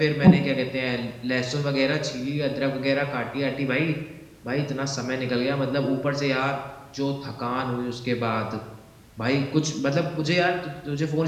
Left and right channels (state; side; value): identical; both; correlation 1.00